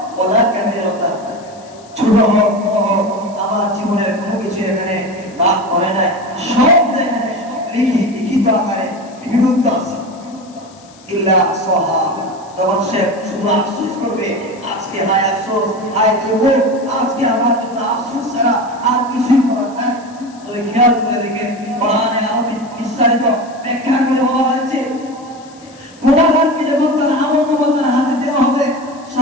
ওয়ালা কাবীরাতা, ছোট হোক বড় হোক আমার জীবনের কোনো কিছু এখানে বাদ পড়ে নাই, সব এখানে লিখিত আকারে লিপিবদ্ধ আছে। ইল্লা সাহা, তখন সে শুধু আফসোস করবে, আজকে হায় আফসোস, হায় দুঃখ, আজকে আমার জন্য আফসোস ছাড়া আর কিছুই করার নাই। তবে খেয়াল করে দেখেন কোরআনে আরো বিস্তারিত ব্যাখ্যা করে বলা হয়েছে, গুনাহগারকে যখন তার আমলনামা তার হাতে দেওয়া হবে,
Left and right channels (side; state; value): left; noise; hiss, 25 dB below the sound